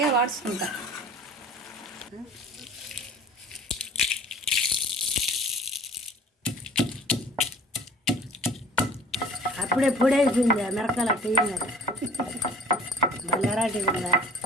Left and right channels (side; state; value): both; normal; correlation 0.46